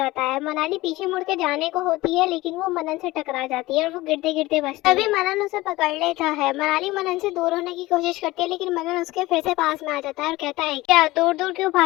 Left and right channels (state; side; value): quieter; right; 19.2 dB